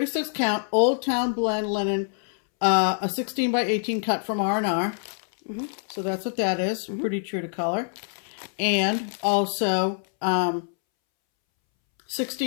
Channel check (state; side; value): silent; right; 61 dB below the other